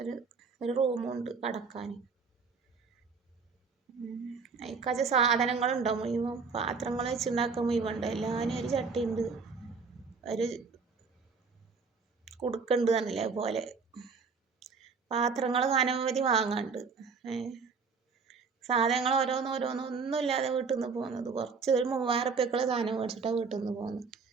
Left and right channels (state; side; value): quieter; left; 5.0 dB